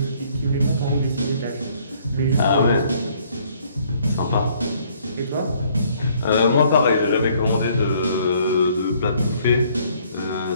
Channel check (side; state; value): both; inverted; correlation -0.63